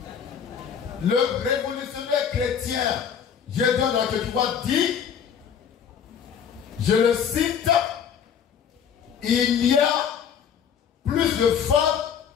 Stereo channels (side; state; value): right; quieter; 7.8 dB